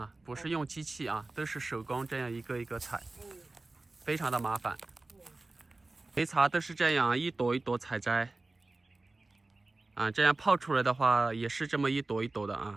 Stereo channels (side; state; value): left; quieter; 3.2 dB